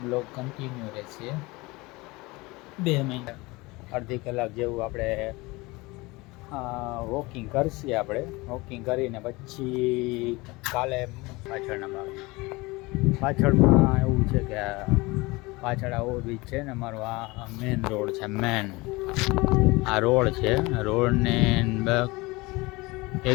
કન્ટિન્યુ રહેશે. 2 મહિના અડધી કલાક જેવું આપણે વોકિંગ કરશે. આપણે વોકિંગ કરીને પછી કાલે પાછળમાં એવું છે કે પાછળ આ ઓવરબ્રિજ છે ને, અમારો આ મેન રોડ છે. આ રોડ છે. રોડને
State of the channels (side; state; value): right; quieter; 23.2 dB